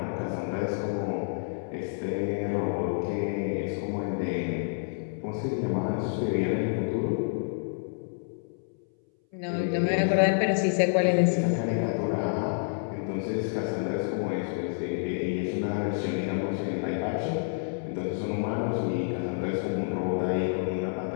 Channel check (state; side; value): silent; right; 59 dB below the other